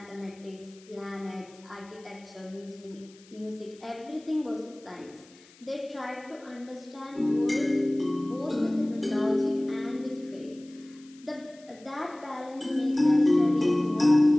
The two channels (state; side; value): noise; left; hiss, 26 dB below the sound